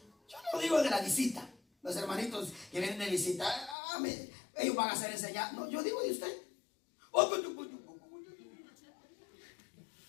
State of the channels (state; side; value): drops out; right; at 3.8 s